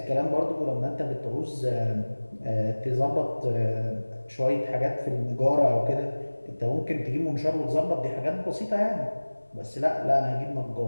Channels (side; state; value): both; inverted; correlation -1.00